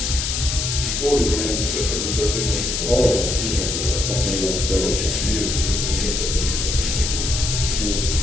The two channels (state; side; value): noise; left; hiss, 1 dB below the sound